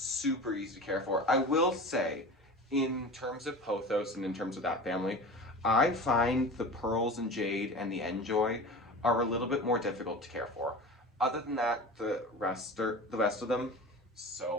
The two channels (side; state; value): both; normal; correlation 0.34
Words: easy to care for. I will say, in terms of pothos and in terms of that family, I find the pearls and jade and the enjoy are a little bit more difficult to care for. Other than that, the rest of them,